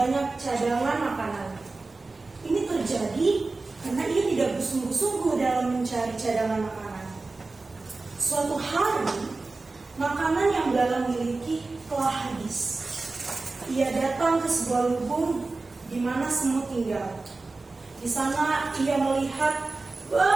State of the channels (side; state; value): left; quieter; 3.5 dB